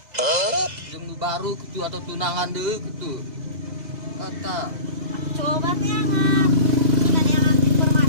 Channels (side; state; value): left; late; 2.0 ms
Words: jeung baru gitu atau tunangan deui gitu. Kata Coba tiangan. Sudah diangan